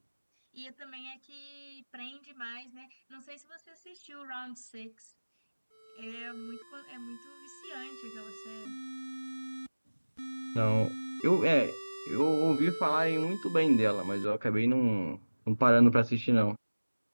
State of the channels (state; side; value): inverted; both; correlation -1.00